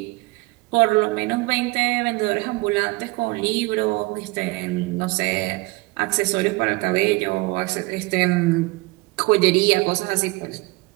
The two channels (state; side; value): quieter; left; 23.1 dB